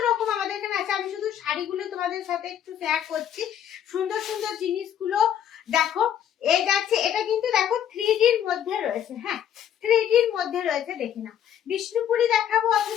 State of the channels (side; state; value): right; quieter; 9.8 dB